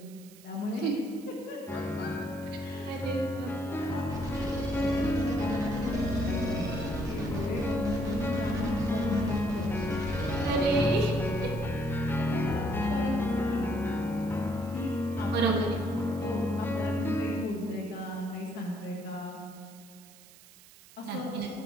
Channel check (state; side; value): noise; right; hiss, 22 dB below the sound